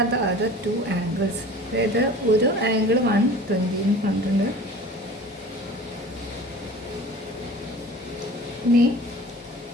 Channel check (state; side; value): normal; both; correlation 0.41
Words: the other two angles? അതായത് ഒരു ആംഗിൾ 120 കണ്ടിട്ടുണ്ട്. ഇനി